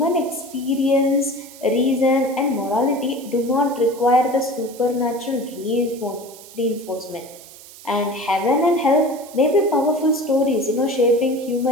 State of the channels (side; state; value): right; noise; hiss, 19 dB below the sound